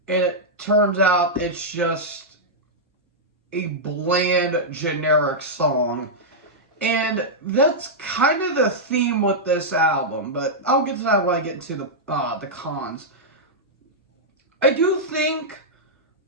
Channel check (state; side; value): normal; both; correlation -0.08